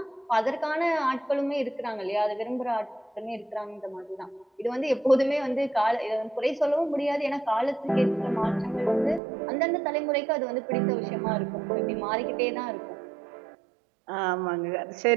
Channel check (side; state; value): left; drops out; at 9.2 s